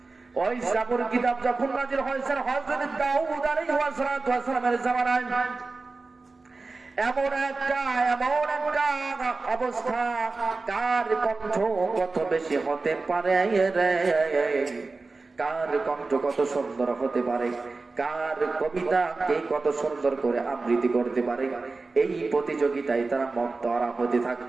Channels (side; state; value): left; quieter; 3.8 dB